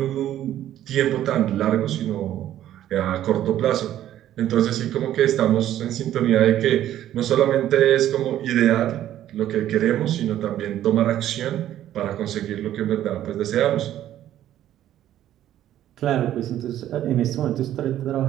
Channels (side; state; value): left; quieter; 12.2 dB